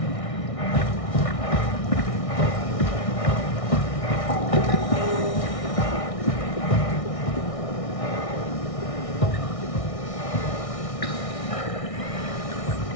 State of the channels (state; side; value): late; right; 1.6 ms